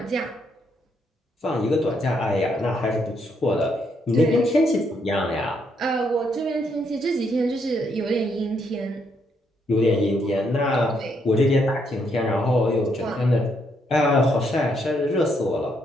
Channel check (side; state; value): both; normal; correlation 0.75